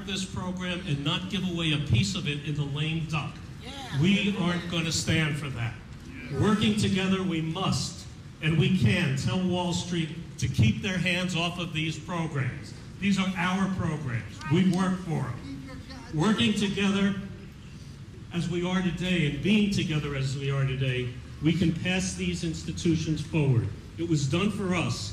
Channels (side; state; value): both; identical; correlation 1.00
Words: this program and not give away a piece of it in the lame duck. We aren't going to stand for that. Working together, we must, and we can, tell Wall Street to keep their hands off of these programs. These are our programs. We work for them. Working together as we are today and being together as we are today, we can pass these institutions forward. It was done for us.